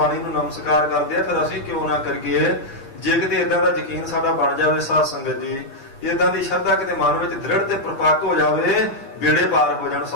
ਨੂੰ ਨਮਸਕਾਰ ਕਰਦੇ ਆ, ਫਿਰ ਅਸੀਂ ਕਿਉਂ ਨਾ ਕਰੀਏ। ਜੇ ਕਿਤੇ ਇਦਾਂ ਦਾ ਯਕੀਨ ਸਾਡਾ ਬਣ ਜਾਵੇ ਸਾਧ ਸੰਗਤ ਜੀ, ਇਦਾਂ ਦੀ ਸ਼ਰਧਾ ਕਿਤੇ ਮਨ ਵਿੱਚ ਦ੍ਰਿੜ ਤੇ ਪ੍ਰਪੱਕ ਹੋ ਜਾਵੇ, ਬੇੜੇ ਪਾਰ ਹੋ ਜਾਣ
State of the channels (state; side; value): late; right; 8.4 ms